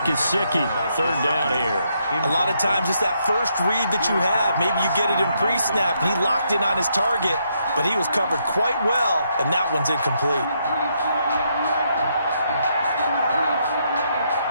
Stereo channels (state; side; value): inverted; both; correlation -0.76